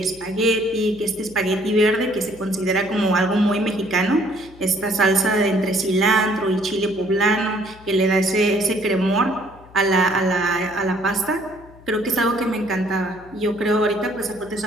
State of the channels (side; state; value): left; noise; hum, 23 dB below the sound